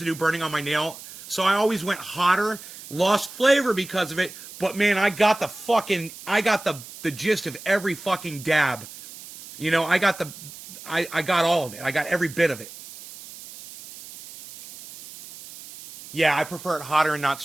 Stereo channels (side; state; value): right; noise; hiss, 15 dB below the sound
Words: burning on my nail. So I always went hotter, lost flavor because of it. But man, I got the gist of every fucking dab. You know, I got all of it. I got every bit of it. Yeah, I prefer it hotter and not